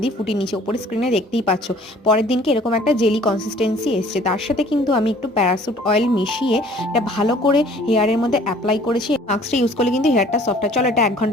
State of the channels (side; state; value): both; normal; correlation 0.53